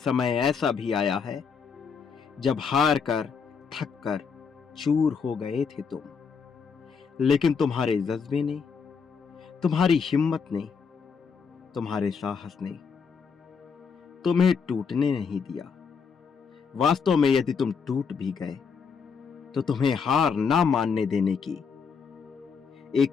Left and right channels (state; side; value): quieter; right; 5.9 dB